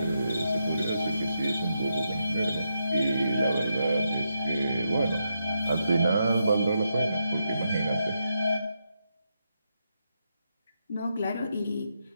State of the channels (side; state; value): both; inverted; correlation -0.83